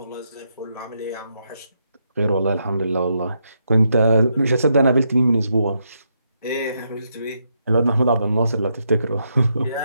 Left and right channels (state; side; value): inverted; both; correlation -0.80